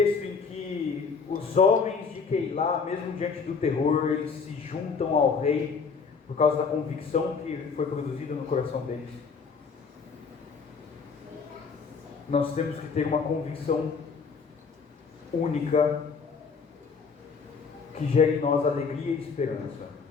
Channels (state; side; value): quieter; right; 5.3 dB